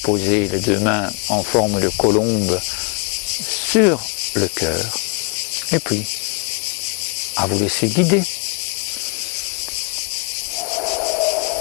les deux mains en forme de colombe sur le cœur et puis à vous laisser guider.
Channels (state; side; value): quieter; right; 33.4 dB